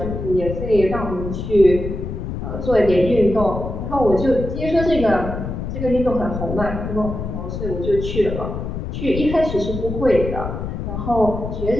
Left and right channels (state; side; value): noise; left; rumble, 5 dB below the sound